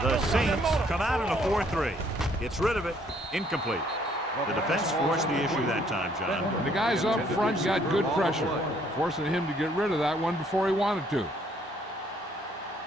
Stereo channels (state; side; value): normal; both; correlation 0.65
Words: The Don't stop. Saints That motor. come out in a 4-3. Gets rid of it. Incomplete. The defense forced the issue that time, John. And the guys up front got good pressure, forcing him to get rid of that one before he wanted to.